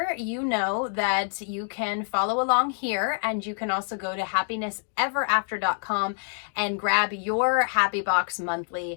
you know that you can follow along here, and you can also go to happinessEverAfter.com and grab your Happy Box monthly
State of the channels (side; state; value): right; silent; 61 dB below the other